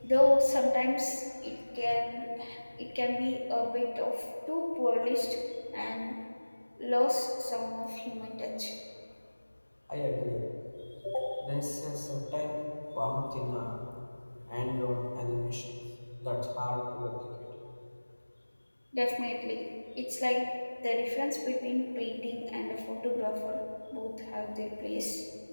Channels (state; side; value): inverted; both; correlation -1.00